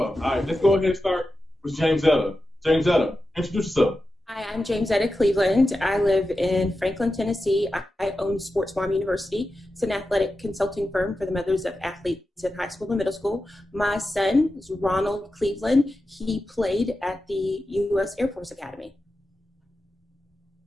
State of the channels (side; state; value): both; normal; correlation 0.91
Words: right, let's go ahead and start with James Etta. James Etta, introduce yourself. Hi, I'm James Etta Cleveland. I live in Franklin, Tennessee. I own Sports Farm University. It's an athletic consulting firm for the mothers of athletes in high school and middle school. My son is Ronald Cleveland. He played at the U.S. Air Force Academy.